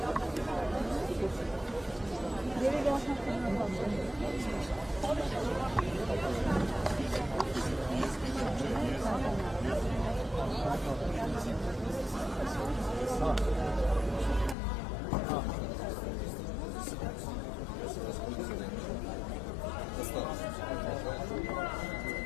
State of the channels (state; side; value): drops out; right; at 14.6 s